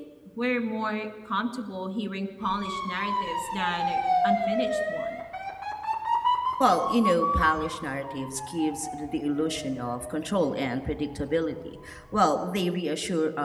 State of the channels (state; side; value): identical; both; correlation 1.00